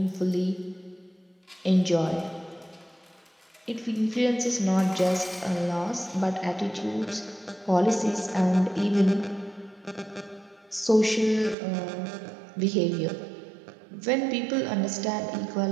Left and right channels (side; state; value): left; drops out; at 11.6 s